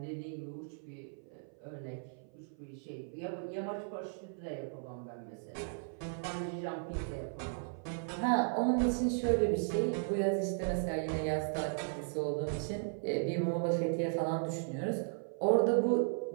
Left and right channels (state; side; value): silent; left; 54 dB below the other